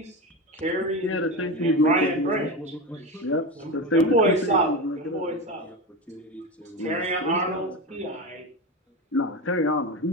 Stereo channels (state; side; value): normal; both; correlation 0.21